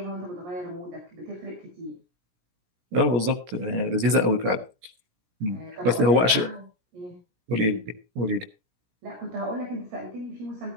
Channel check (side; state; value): left; late; 17 ms